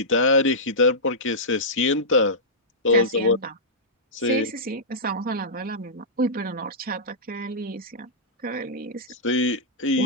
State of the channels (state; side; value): normal; both; correlation -0.14